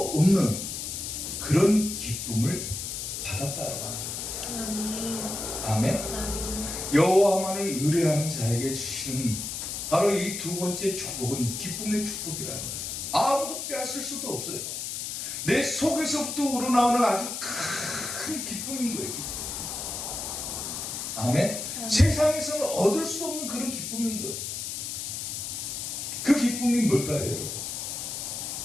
없는 그런 기쁨을 받았다라고 하는 겁니다. 아멘. 아멘. 여호와만을 의뢰하는 자에게 주시는 바로 이 두 번째 축복은 기쁨의 축복이라는 거예요. 아무도 빼앗을 수도 없어요. 내 속에서부터 우러나오는 아주 큰 기쁨인 거예요. 기쁨. 아멘. 세상에서는 얻을 수 없는 그런 기쁨인 거예요. 그 기쁨이 뭘까요, 여러분?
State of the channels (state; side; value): noise; left; hiss, 5 dB below the sound